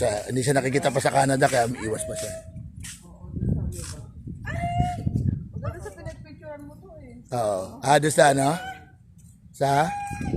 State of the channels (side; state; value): both; identical; correlation 1.00